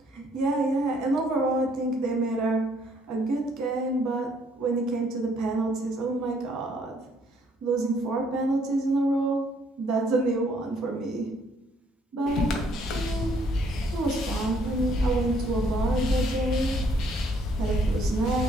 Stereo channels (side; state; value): both; normal; correlation 0.66